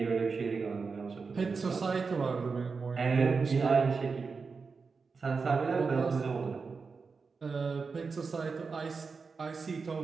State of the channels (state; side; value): quieter; left; 4.8 dB